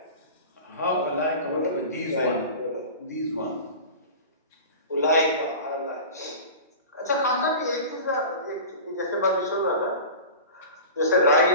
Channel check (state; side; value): inverted; both; correlation -0.35